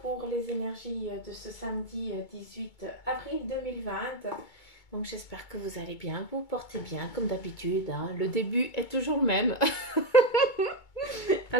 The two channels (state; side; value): late; right; 2.2 ms